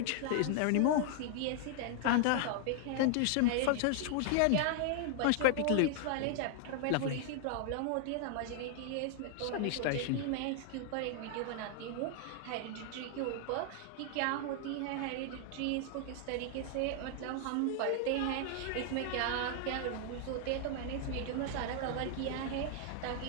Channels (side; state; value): both; different; correlation 0.00